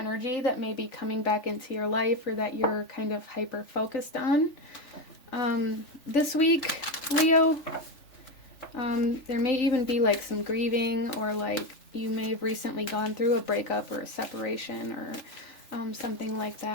that may be coming back into your life, or that you're kind of hyper focused on. This week, Leo, there may even be like some grieving, or like you may have recently gone through a breakup or a separation, or something like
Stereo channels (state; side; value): late; right; 3.4 ms